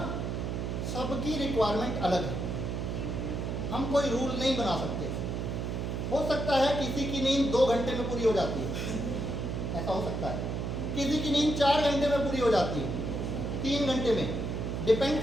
सबकी रिक्वायरमेंट अलग है, हम कोई रूल नहीं बना सकते। हो सकता है किसी की नींद 2 घंटे में पूरी हो जाती है, ऐसा हो सकता है, किसी की नींद 4 घंटे में पूरी हो जाती है, 3 घंटे में, डिपेंड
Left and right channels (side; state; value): right; noise; hum, 2 dB below the sound